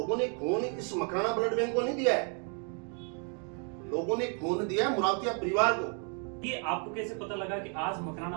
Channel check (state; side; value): quieter; left; 39.5 dB